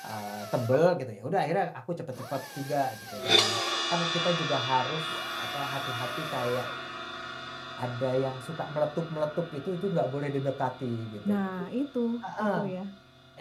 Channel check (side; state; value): both; identical; correlation 1.00